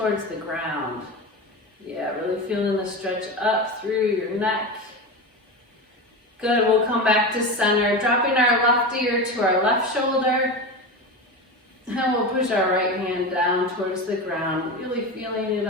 the ground. Yeah, really feeling the stretch up through your neck. Good, we'll come back to center, dropping our left ear to our left shoulder. And we'll push our right hand down towards the ground, really feeling it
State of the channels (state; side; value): normal; both; correlation 0.23